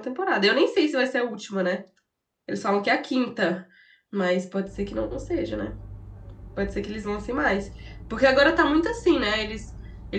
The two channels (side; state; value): both; identical; correlation 1.00